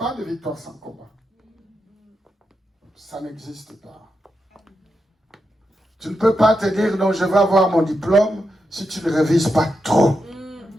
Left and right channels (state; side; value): normal; both; correlation 0.86